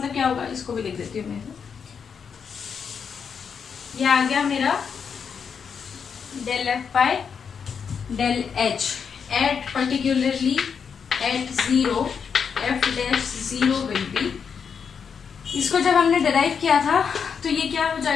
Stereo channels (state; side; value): quieter; right; 6.6 dB